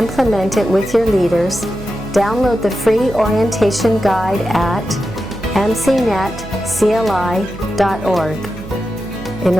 it with your leaders, download the free orientation guide at MCNetCLI.org. In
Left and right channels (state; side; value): noise; right; hum, 14 dB below the sound